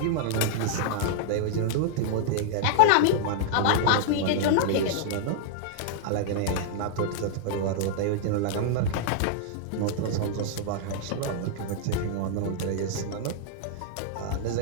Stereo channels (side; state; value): both; different; correlation -0.01